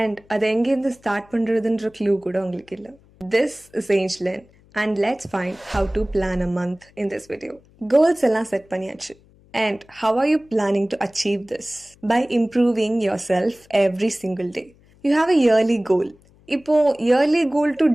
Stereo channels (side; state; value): left; noise; hum, 29 dB below the sound